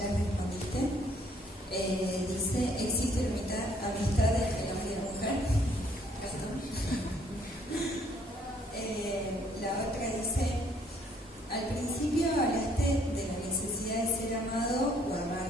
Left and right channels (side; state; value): both; normal; correlation 0.65